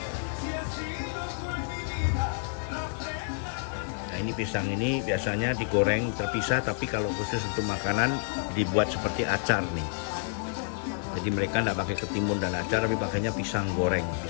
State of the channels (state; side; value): silent; right; digital silence